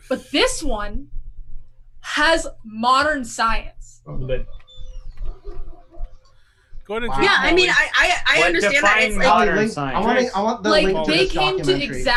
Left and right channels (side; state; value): both; identical; correlation 1.00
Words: but this one has modern science. Go ahead and Wow. drink, Yeah, I mean, Molly. I What understand that. define It's like, modern link, science? I want the Like link to they this came to documentary.